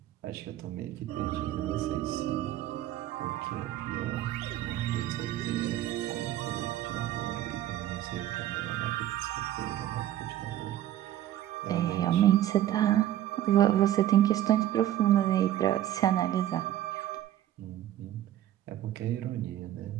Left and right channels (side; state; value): left; quieter; 12.7 dB